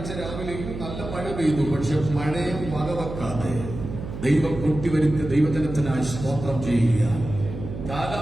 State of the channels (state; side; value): noise; right; hum, 9 dB below the sound